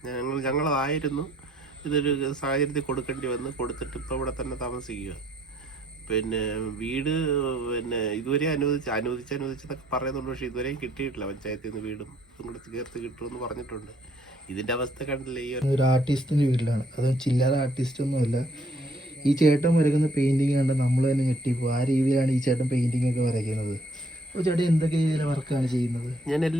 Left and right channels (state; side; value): normal; both; correlation 0.65